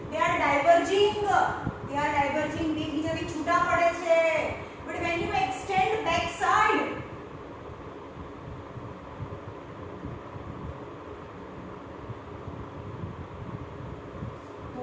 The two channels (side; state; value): both; identical; correlation 1.00